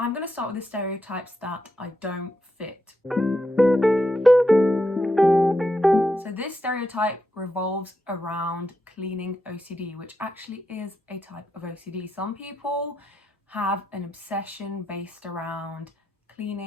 gonna start with the stereotypes that I don't fit. So this stereotype revolves around cleaning OCD, which actually is a type of OCD. Some people have an obsession based around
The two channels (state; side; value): normal; both; correlation 0.84